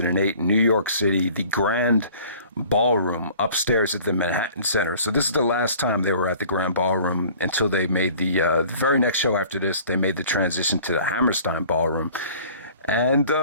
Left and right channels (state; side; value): inverted; both; correlation -0.49